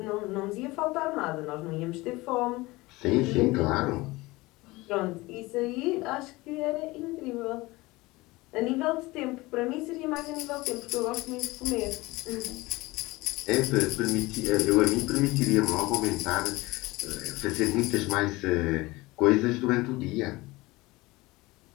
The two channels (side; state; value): right; quieter; 21.2 dB